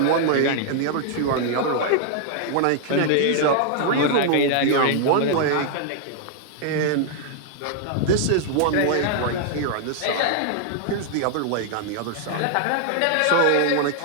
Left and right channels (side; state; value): both; different; correlation -0.01